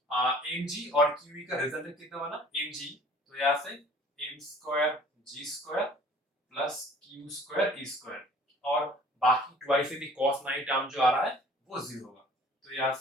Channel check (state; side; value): normal; both; correlation 0.51